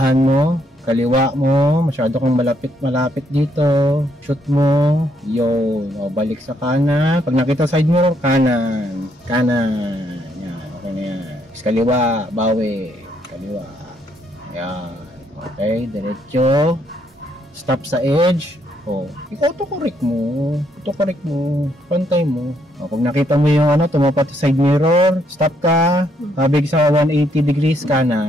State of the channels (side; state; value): both; normal; correlation 0.72